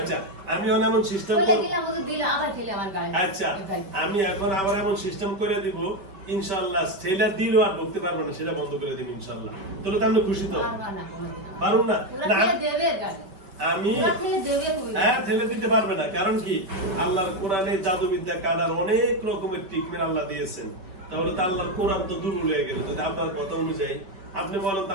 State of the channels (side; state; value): left; late; 5.2 ms